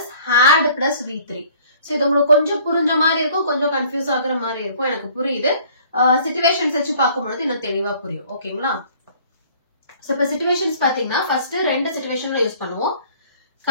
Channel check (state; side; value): inverted; both; correlation -0.54